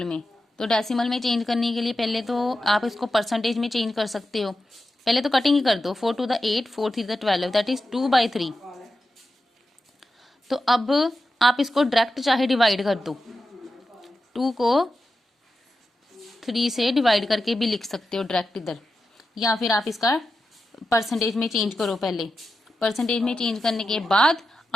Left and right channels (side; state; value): both; normal; correlation 0.90